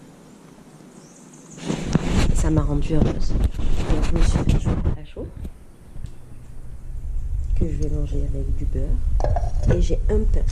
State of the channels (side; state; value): both; identical; correlation 1.00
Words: Et ça m'a rendue heureuse. Donc je me suis fait un chocolat chaud que je vais manger avec du beurre. Et j'ai un pain.